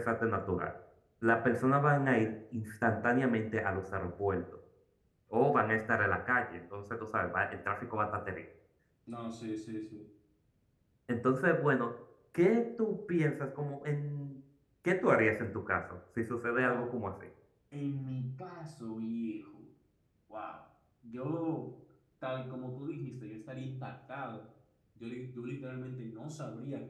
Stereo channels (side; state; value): both; identical; correlation 1.00